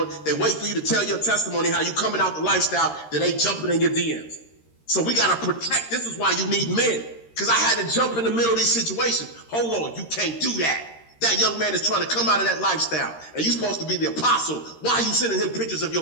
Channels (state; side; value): late; right; 13 ms